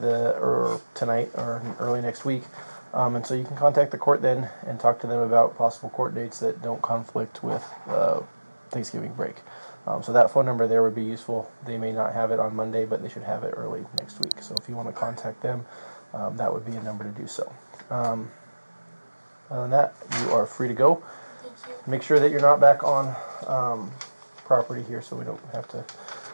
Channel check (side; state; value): both; inverted; correlation -1.00